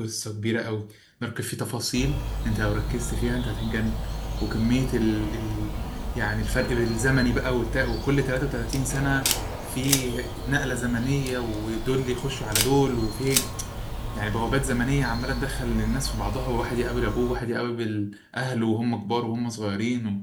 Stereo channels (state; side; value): identical; both; correlation 1.00